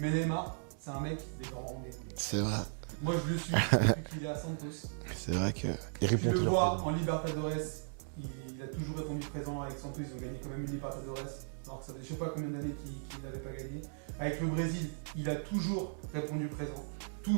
Neymar, c'est un mec des grands rendez-vous, les gars. C'est vrai. Moi, je le suis depuis qu'il est à Santos. C'est vrai que. Tu le vois en Libertadores, il a toujours répondu présent. Avec Santos, ils ont gagné quand même une Libertadores, alors que ça faisait je sais pas combien d'années qu'il ne l'avait pas gagné. Avec le Brésil, il a toujours répondu présent.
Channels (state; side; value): silent; left; digital silence